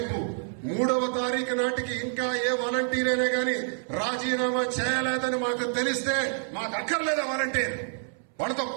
3వ తారీఖు నాటికి ఇంకా ఏ వాలంటీర్ అయినా కానీ రాజీనామా చేయలేదని మాకు తెలిస్తే మాకు అక్కర్లేదు వాలంటీర్, వాళ్ళతో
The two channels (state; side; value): silent; left; 60 dB below the other